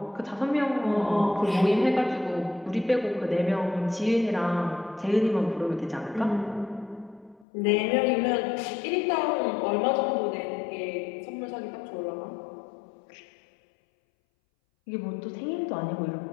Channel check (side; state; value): right; drops out; at 7.5 s